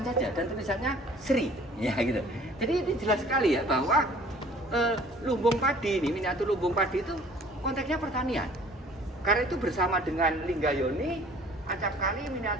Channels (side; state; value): both; normal; correlation 0.52